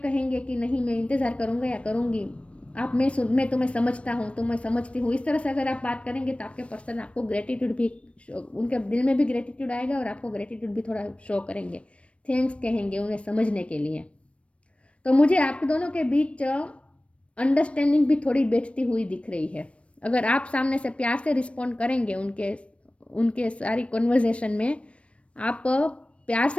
कि नहीं मैं इंतज़ार करूँगा या करूँगी, आप मैं तुम्हें समझता हूँ, तुम्हें समझती हूँ, इस तरह से अगर आप बात करेंगे तो आपके पर्सन आपको ग्रेटिट्यूड भी, उनके दिल में भी ग्रेटिट्यूड आएगा और आपको ग्रेटिट्यूड भी थोड़ा शो करेंगे, थैंक्स कहेंगे उन्हें समझने के लिए। तो मुझे आप दोनों के बीच अंडरस्टैंडिंग भी थोड़ी बैठती हुई दिख रही है। अगर आप सामने से प्यार से रिस्पॉन्ड करेंगे उनके उनके सारी कन्वर्जेशन में, आप प्यार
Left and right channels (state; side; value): late; right; 0.062 ms